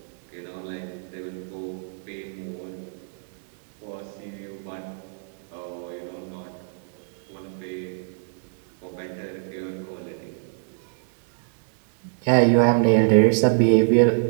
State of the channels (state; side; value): silent; left; 62 dB below the other